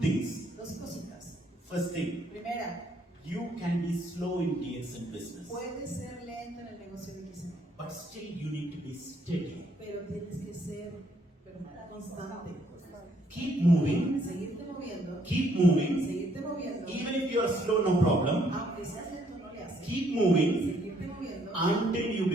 Dos cositas. First thing, Primera, you can be slow in DXN business, puedes ser lento en el negocio de DXN, but still you need to be steady. pero tienes que ser constante. Keep moving, Seguirte moviendo. keep moving. Seguirte moviendo. Even if you are slow, no problem. Aunque seas lento, no le haces. Keep moving Seguirte moviendo until you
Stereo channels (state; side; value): normal; both; correlation 0.68